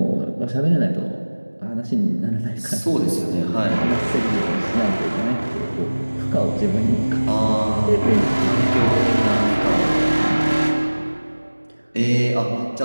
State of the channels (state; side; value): inverted; both; correlation -1.00